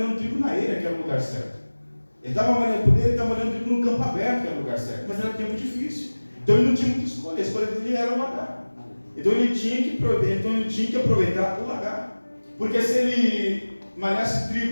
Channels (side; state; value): both; inverted; correlation -1.00